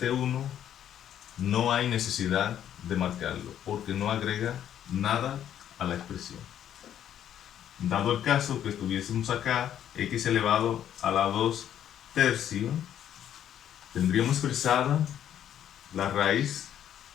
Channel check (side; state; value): right; quieter; 10.3 dB